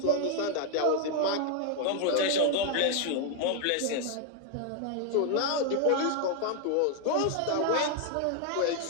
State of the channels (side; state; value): both; different; correlation 0.00